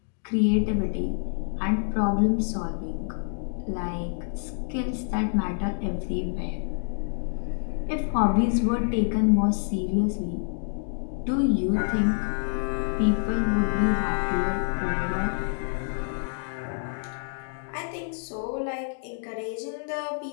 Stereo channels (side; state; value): right; silent; digital silence